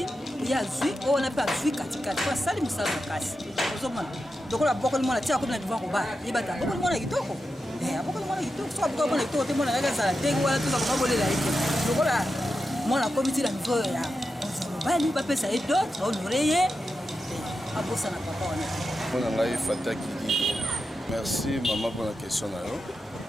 ye azwi oyo wana mpe azwi katikati fo asali mosala makasi ozomona lokola abokoli mwana tia akomi na devoir kobala yebata abokoli mwana kitoko abokoli mwana kitoko soki abokoli mwana kitoko te mwana kaka azala ndenge wana toza komabolela ye te lokola mwana akomi ti na niveau ya bali bapesa ye dote baonore ye abosa na papa wana mpona ngai fataki lido merci mama mpona question na yo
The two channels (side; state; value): both; normal; correlation 0.89